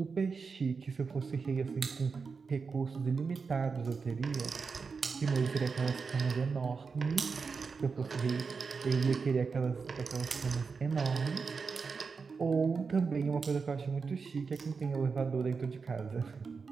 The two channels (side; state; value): left; quieter; 5.1 dB